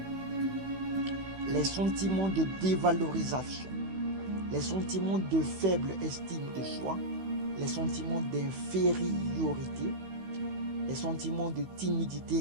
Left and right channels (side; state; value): left; late; 16 ms